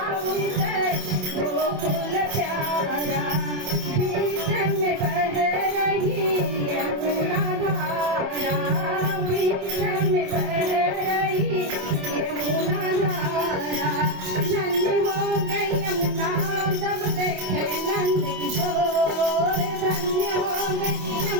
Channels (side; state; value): left; late; 27 ms